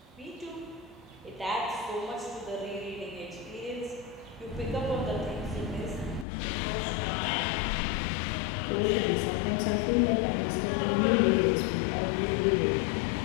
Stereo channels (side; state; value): right; drops out; at 6.2 s